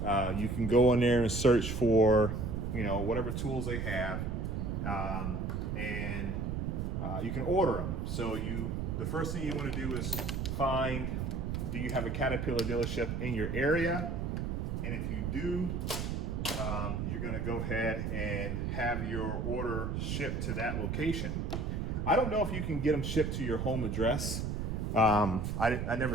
you can go in there and search for, whatever tools they have, and you can order them. So the first thing you want to do is find, do you have a Caterpillar dealership in your area? And if you do, you're going to go ahead and have your order shipped to that location. I don't know if you can get them shipped to your home address. I never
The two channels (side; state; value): right; noise; rumble, 2 dB below the sound